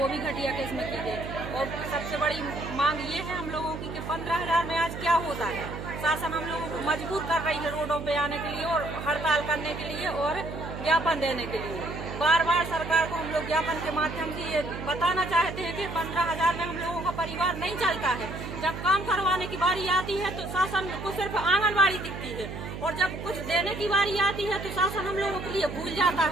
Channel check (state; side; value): noise; right; hum, 8 dB below the sound